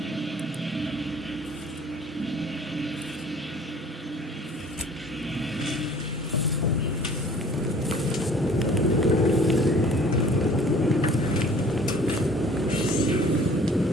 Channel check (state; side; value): normal; both; correlation 0.51